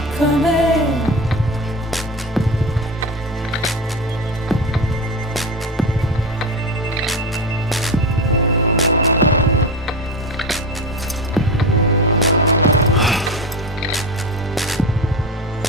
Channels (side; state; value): both; normal; correlation 0.23